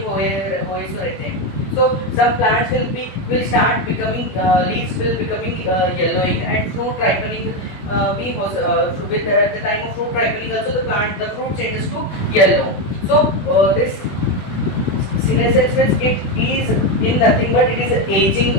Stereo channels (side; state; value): right; late; 20 ms